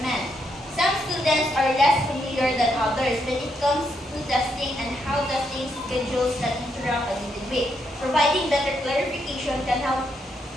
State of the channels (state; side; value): normal; both; correlation 0.78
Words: Some students are less familiar than others when it comes to testing and how testing schedules can interact with the week. Providing better clarification can help